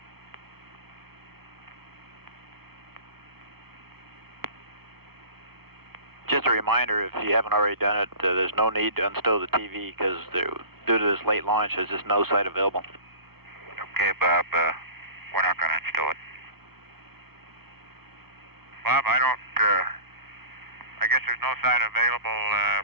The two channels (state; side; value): late; left; 0.95 ms